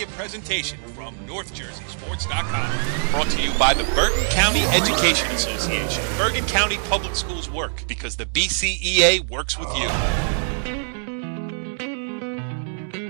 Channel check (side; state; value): left; silent; digital silence